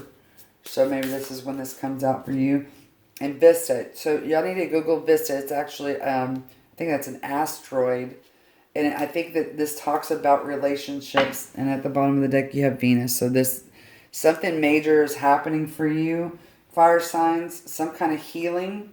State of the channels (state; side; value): identical; both; correlation 1.00